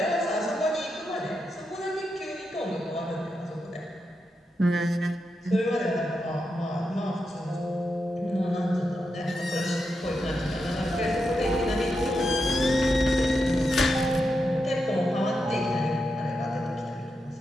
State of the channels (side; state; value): both; normal; correlation 0.86